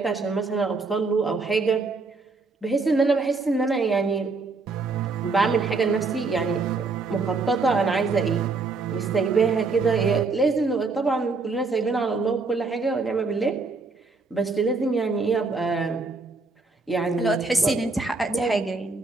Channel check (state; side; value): quieter; left; 3.9 dB